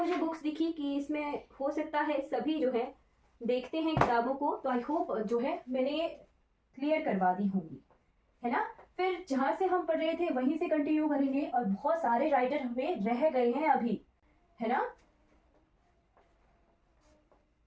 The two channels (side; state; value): both; identical; correlation 1.00